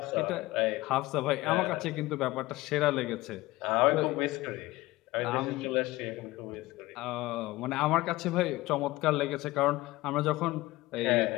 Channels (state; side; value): quieter; right; 19.3 dB